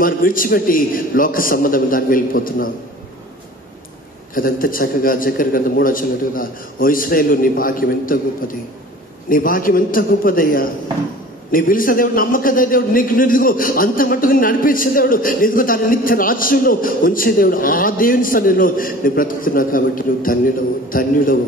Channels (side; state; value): both; normal; correlation 0.43